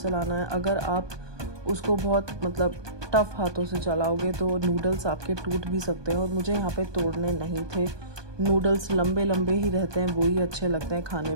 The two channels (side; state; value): left; late; 1.2 ms